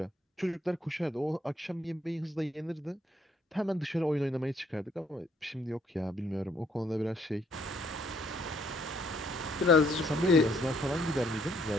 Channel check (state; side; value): normal; both; correlation 0.67